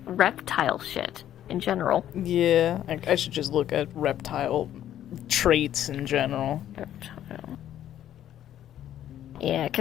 reptile shit in general. Yeah, I should just look at reptile traits in general. Yeah,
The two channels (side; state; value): right; quieter; 11.4 dB